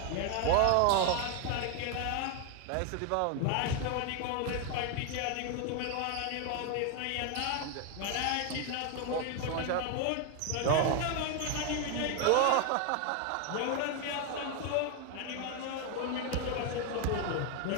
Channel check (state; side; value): different; both; correlation 0.01